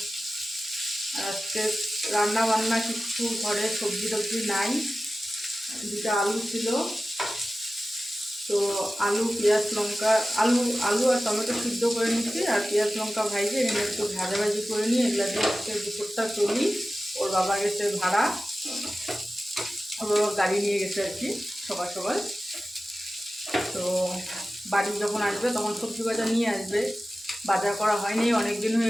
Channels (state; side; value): normal; both; correlation 0.95